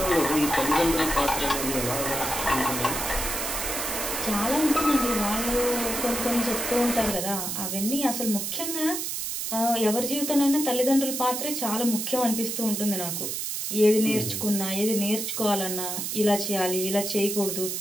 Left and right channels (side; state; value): right; noise; hiss, 3 dB below the sound